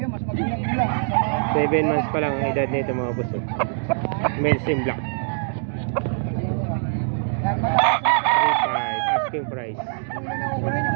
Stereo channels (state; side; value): silent; left; digital silence